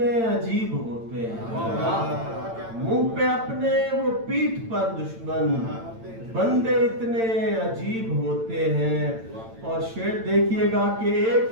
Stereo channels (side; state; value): left; late; 8.9 ms